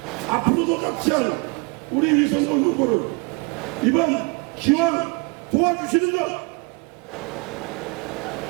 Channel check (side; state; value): left; quieter; 30.9 dB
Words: 앞으로도 같이 할 우리 위성원 후보를 이번 기왕 도와주시는 것